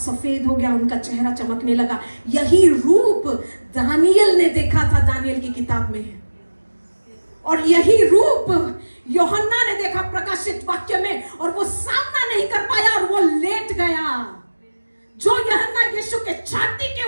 हो गया, उनका चेहरा चमकने लगा। यही रूप दानियल ने देखा था दानियल की किताब में, और यही रूप यूहन्ना ने देखा प्रकाशित वाक्य में, और वो सामना नहीं कर पाया और वो लेट गया। जो यूहन्ना यीशु के छाती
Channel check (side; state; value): both; inverted; correlation -1.00